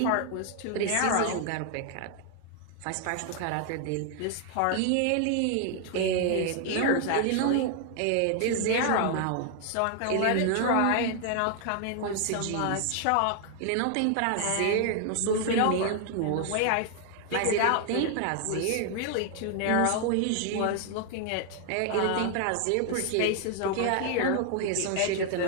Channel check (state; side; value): different; both; correlation 0.00